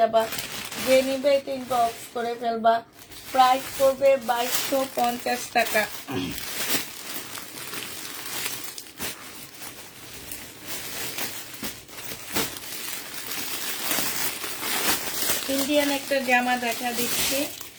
যে নিবে এটা ইনবক্স করে ফেলবা। প্রাইস করবে 2250 টাকা। ইন্ডিয়ান একটা জামা দেখা দিচ্ছি।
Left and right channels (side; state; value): both; identical; correlation 1.00